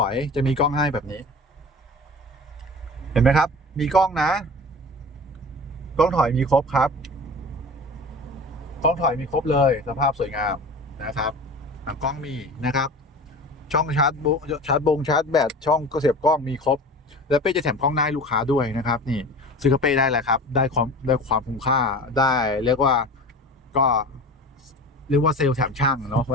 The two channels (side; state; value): both; normal; correlation 0.36